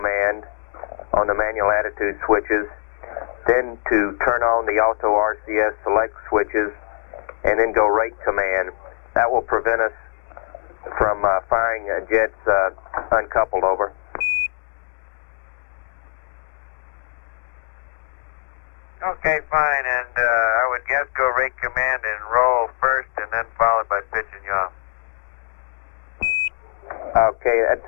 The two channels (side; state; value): right; silent; digital silence